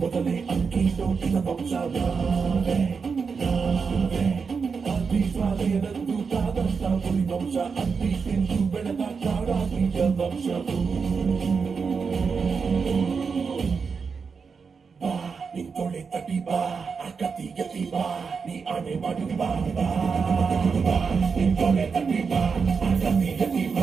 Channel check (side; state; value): left; quieter; 5.5 dB